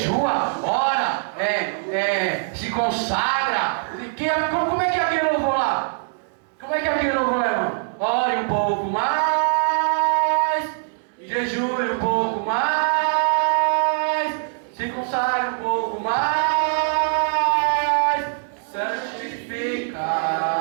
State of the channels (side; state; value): left; silent; digital silence